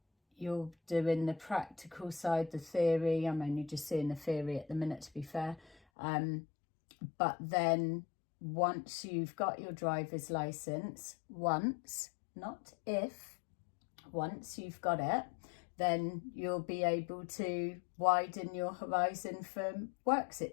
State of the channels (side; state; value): right; drops out; at 5.8 s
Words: You're doing the practical side, the theory. I'm only just seeing the theory at the minute, to be fair. But then once you've got your driver's license, once, not if, once you've got it, then you'll be able to widen your horizon for work